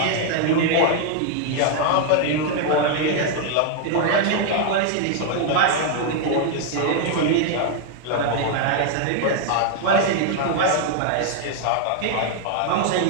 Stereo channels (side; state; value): both; different; correlation 0.00